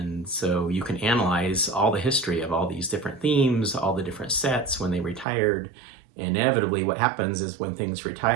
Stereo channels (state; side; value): drops out; left; at 5.2 s